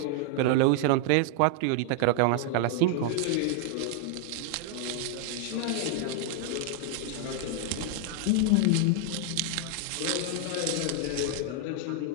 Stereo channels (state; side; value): different; both; correlation 0.00